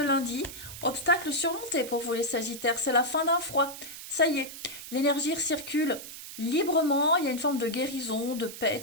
lundi. Obstacle surmonté pour vous les sagittaires. C'est la fin d'un froid. Ça y est. L'énergie circule librement. Il y a une forme de guérison, de paix, de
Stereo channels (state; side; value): noise; right; hiss, 12 dB below the sound